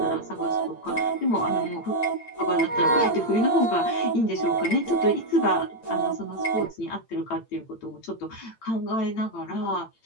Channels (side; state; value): right; late; 8.8 ms